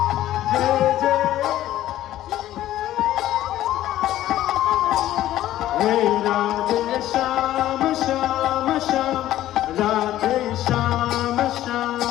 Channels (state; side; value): quieter; right; 13.7 dB